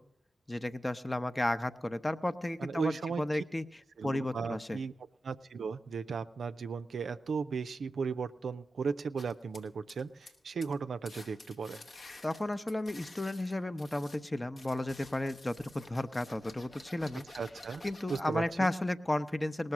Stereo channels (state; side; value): normal; both; correlation 0.93